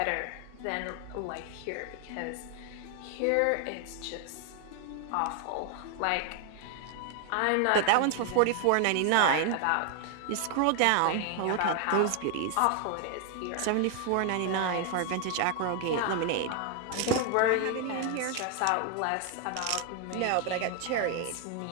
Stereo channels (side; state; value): both; different; correlation 0.00